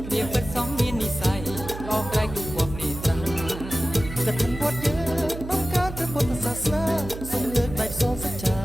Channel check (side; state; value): right; noise; hum, 10 dB below the sound